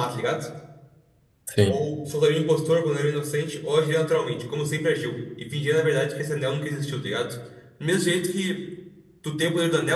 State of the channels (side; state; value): both; identical; correlation 1.00